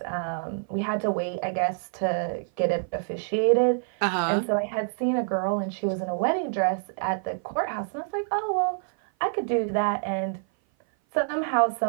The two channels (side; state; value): left; silent; 57 dB below the other